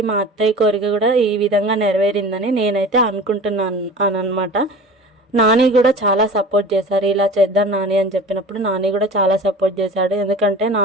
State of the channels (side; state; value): both; normal; correlation 0.38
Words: మా అత్తయ్య కోరిక కూడా ఈ విధంగా నెరవేరిందని నేనైతే అనుకుంటున్నాను అనమాట. నాని కూడా చాలా సపోర్ట్ చేశారు. ఇలా చేద్దాం నాని అని చెప్పినప్పుడు నాని కూడా చాలా సపోర్ట్ చేశాడు. ఎందుకంటే